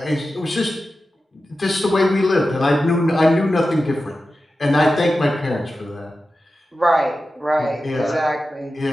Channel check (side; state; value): both; normal; correlation 0.93